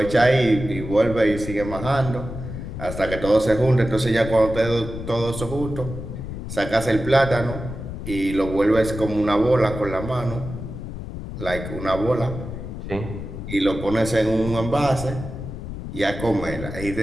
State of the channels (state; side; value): noise; left; rumble, 8 dB below the sound